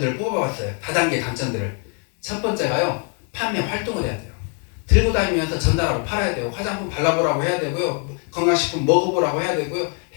뽑아봤어요. 다단계 단점들을. 첫 번째가요, 판매 활동을 해야 돼요. 들고 다니면서 전달하고 팔아야 돼요. 화장품 발라보라고 해야 되고요. 건강식품 먹어보라고 해야 되고요.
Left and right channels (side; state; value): right; quieter; 38.5 dB